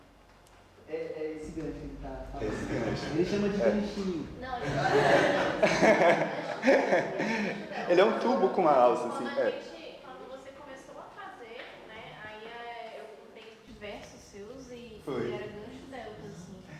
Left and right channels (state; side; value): identical; both; correlation 1.00